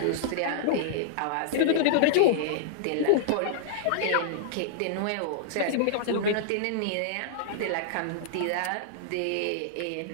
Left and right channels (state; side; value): different; both; correlation -0.01